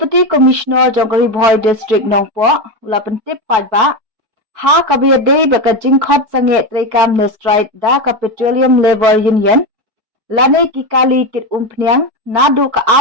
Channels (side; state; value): left; late; 4.6 ms